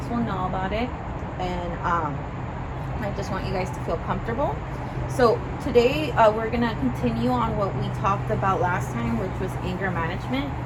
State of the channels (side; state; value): both; identical; correlation 1.00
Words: will know about it. And I just want you guys to feel comfortable. So today we're going to continue on what we talked about last time, which was anger management.